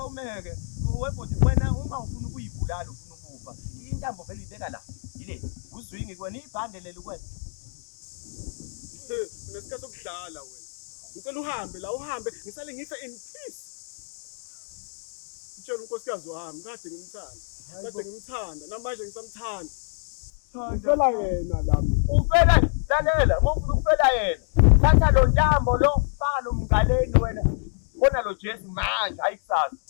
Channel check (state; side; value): silent; right; 57 dB below the other